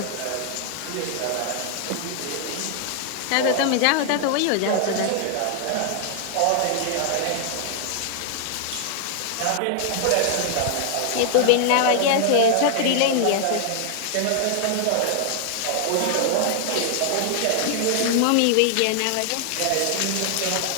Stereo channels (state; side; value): different; both; correlation 0.00